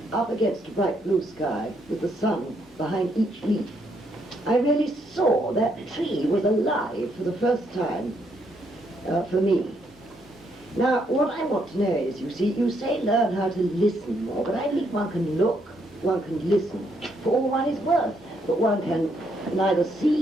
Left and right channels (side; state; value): both; normal; correlation 0.74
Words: up against a bright blue sky with the sun behind each leaf. I really saw that tree was alive for the first time for me. Now, what I want to know is, you see, you say learn how to listen more, but I think one can look, one can listen for all one is worth, but one can neither